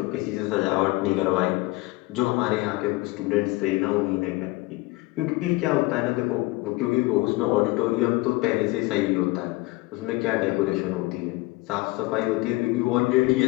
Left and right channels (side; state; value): right; quieter; 21.6 dB